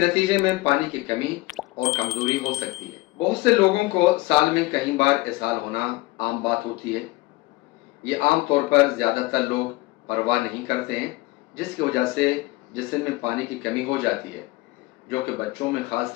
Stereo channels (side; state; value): right; quieter; 20.3 dB